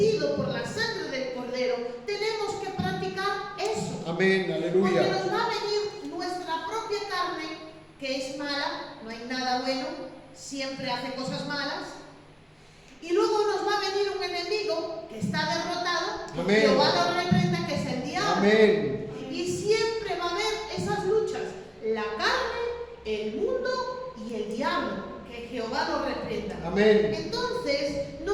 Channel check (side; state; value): both; identical; correlation 1.00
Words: por la sangre del Cordero, tenemos que practicar eso. Amén, Porque aleluya. nos va a venir nuestra propia carne, que es mala, no hay nada bueno, siempre hace cosas malas. Y luego nos va a venir un enemigo que está derrotado, que Amén. Jehová lo reprenda, que es el diablo. Amén. Y siempre va a haber esas luchas, la carne, el mundo y el diablo, que Jehová lo reprenda. Amén. Entonces,